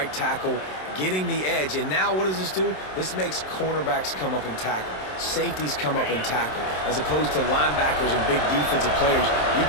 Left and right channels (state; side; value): late; right; 27 ms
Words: tackle, getting the edge. And now what does this do? This makes cornerbacks come up and tackle. Safeties come up and tackle. As opposed to linebackers and big defensive players, you